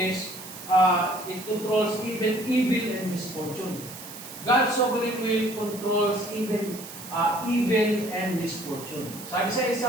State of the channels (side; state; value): right; noise; hiss, 13 dB below the sound